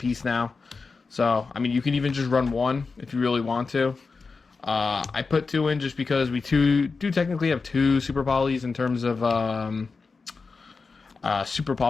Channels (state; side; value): quieter; right; 4.5 dB